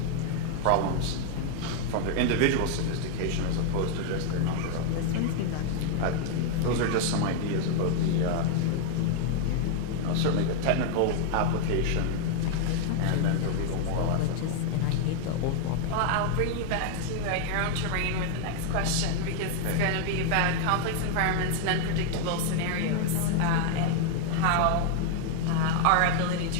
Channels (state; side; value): different; both; correlation 0.00